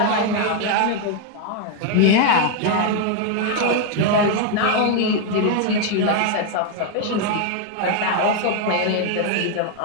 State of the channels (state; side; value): different; both; correlation 0.01